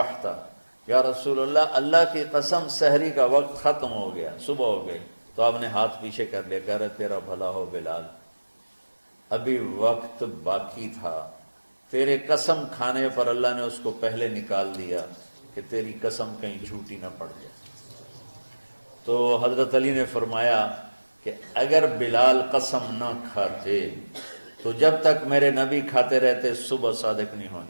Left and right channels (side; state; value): both; inverted; correlation -1.00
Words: یا رسول اللہ اللہ کی قسم سحری کا وقت ختم ہو گیا، صبح ہو گئی۔ تو آپ نے ہاتھ پیچھے کر لیا، کہہ رہے تیرا بھلا ہو بلال، ابھی وقت باقی تھا، تیرے قسم کھانے پر اللہ نے اس کو پہلے نکال دیا کہ تیری قسم کہیں جھوٹی نہ پڑ جائے۔ تو حضرت علی نے فرمایا کہ اگر بلال قسم نہ کھاتے تو جب تک میرے نبی کھاتے رہتے صبح صادق نہیں